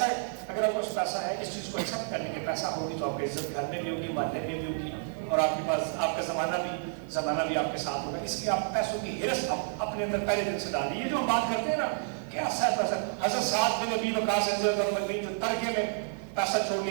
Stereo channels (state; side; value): silent; left; digital silence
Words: اگر آپ کو پیسہ ہے, اس چیز کو ایکسپٹ کرنے کے پیسہ ہوگی تو آپ کی عزت گھر میں بھی ہوگی, محلے میں بھی ہوگی, اور آپ کے پاس آپ کا زمانہ بھی آپ کے ساتھ ہوگا. اس لیے آپ پیسوں کی ہرس اپنے اندر پہلے دن سے ڈالیے. یہ جو ہم بات کرتے ہیں نا کہ حضرت سعد بن ابی وقاص رضی اللہ عنہ جو ترکے میں پیسہ چھوڑ